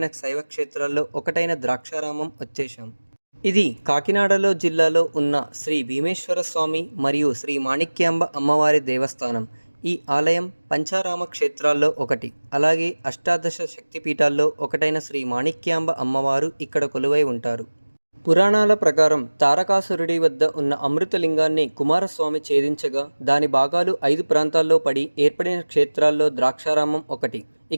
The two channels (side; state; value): both; inverted; correlation -1.00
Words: శైవ క్షేత్రాల్లో ఒకటైన ద్రాక్షారామం వచ్చేసాం. ఇది కాకినాడలో జిల్లాలో ఉన్న శ్రీ భీమేశ్వర స్వామి మరియు శ్రీ మాణిక్యాంబ అమ్మవారి దేవస్థానం. ఈ ఆలయం పంచారామ క్షేత్రాల్లో ఒకటి. అలాగే అష్టాదశ శక్తిపీఠాల్లో ఒకటైన శ్రీ మాణిక్యాంబ అమ్మవారు ఇక్కడ కొలువై ఉంటారు. పురాణాల ప్రకారం తారకాసురుడి వద్ద ఉన్న అమృతలింగాన్ని కుమారస్వామి ఛేదించగా దాని భాగాలు 5 ప్రాంతాల్లో పడి ఏర్పడిన క్షేత్రాల్లో ద్రాక్షారామం ఒకటి.